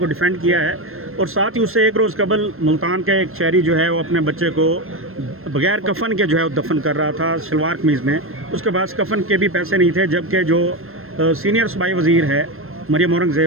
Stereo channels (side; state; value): left; late; 0.62 ms